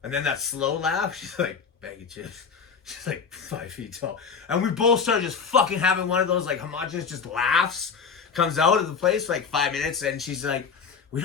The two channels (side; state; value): right; quieter; 5.9 dB